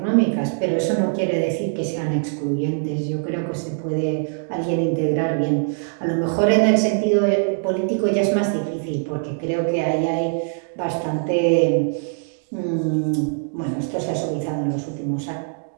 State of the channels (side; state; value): left; silent; digital silence